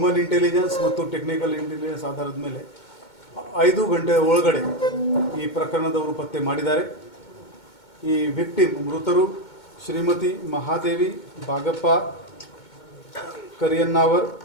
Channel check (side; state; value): right; late; 2.2 ms